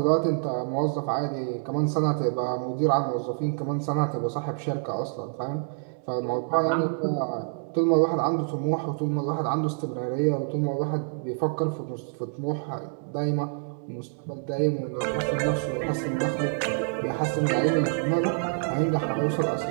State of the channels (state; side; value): silent; left; digital silence